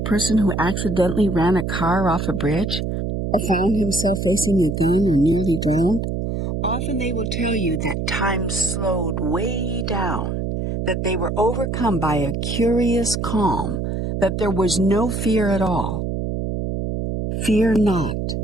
who accidentally ran a car off a bridge or found himself facing a gun and nearly drowned? Often they will tell you that time slowed way down, that they were overcome by a curious calm, that there was no fear at all. Fear not,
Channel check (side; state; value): right; noise; hum, 2 dB below the sound